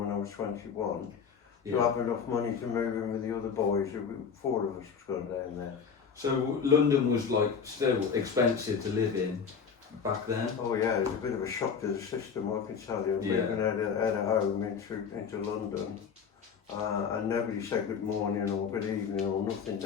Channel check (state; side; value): quieter; right; 6.4 dB